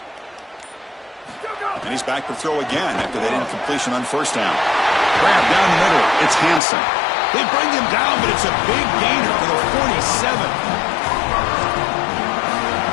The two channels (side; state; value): right; drops out; at 6.6 s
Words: And he's back to throw again after that incompletion on first down. Grab down the middle. It's Hansen. They bring him down, but it's a big gainer for the 47.